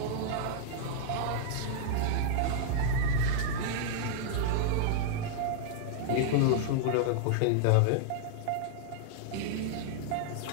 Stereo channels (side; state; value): both; different; correlation -0.01